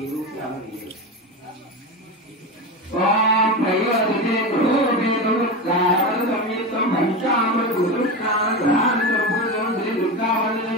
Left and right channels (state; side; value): normal; both; correlation 0.20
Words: ఓం ప్రయోజనే గృహోపేతం గాయన సంయుక్తం పంచామృత గురుష్ణాన గ్రహాన సంపూర్ణం శ్రీ దుర్గావళి